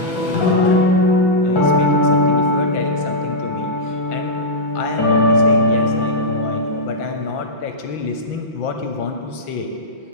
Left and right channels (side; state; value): right; late; 5.9 ms